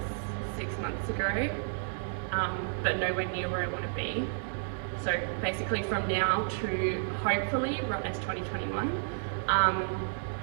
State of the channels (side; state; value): left; silent; 57 dB below the other